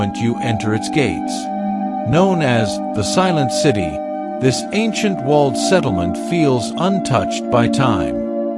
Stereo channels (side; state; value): both; identical; correlation 1.00